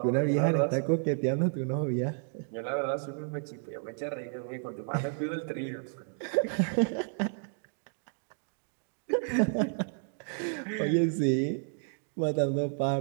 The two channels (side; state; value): left; silent; 57 dB below the other